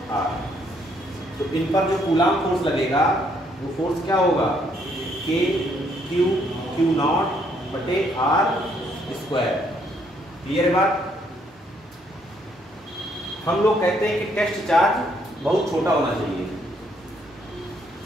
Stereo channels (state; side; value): normal; both; correlation 0.70